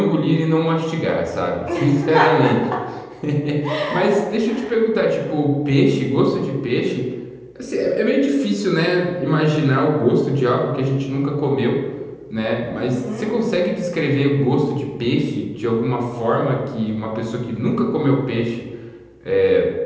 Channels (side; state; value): both; identical; correlation 1.00